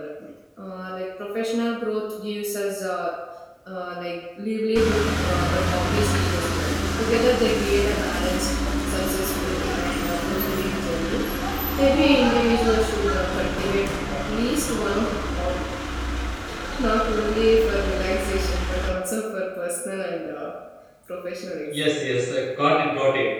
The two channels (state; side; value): identical; both; correlation 1.00